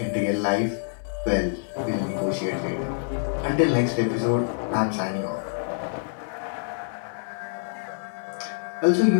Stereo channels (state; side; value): silent; right; digital silence